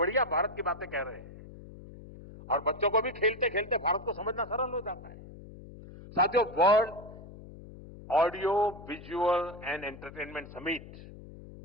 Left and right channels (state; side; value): noise; left; hum, 16 dB below the sound